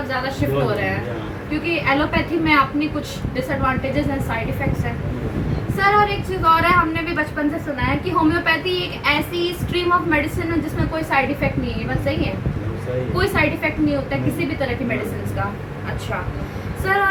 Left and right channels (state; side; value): identical; both; correlation 1.00